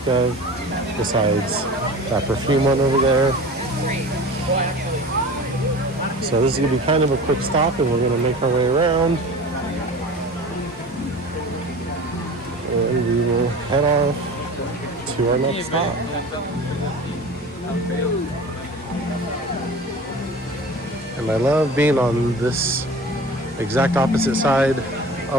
of besides that perfume one over there. So this is going to be kind of a quick stop and we're going to make our way around. And we will head off to our next stop. And I love being on this exact opposite side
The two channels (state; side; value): normal; both; correlation 0.37